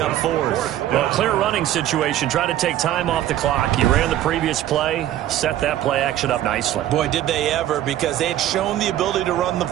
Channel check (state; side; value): quieter; left; 12.7 dB